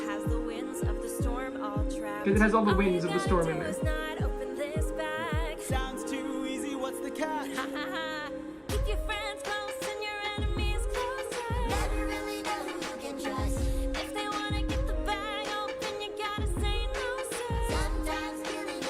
has the winds of the storm all trapped. It has all the All winds you of the gotta storm do in there. is not open this bag. Sounds too easy, what's the catch? Ha ha ha. Keep your friends close and your enemies closer. Never really know who you can trust. If they wanna get the bag open, you gotta say no, sir. Sometimes killing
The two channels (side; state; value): both; identical; correlation 1.00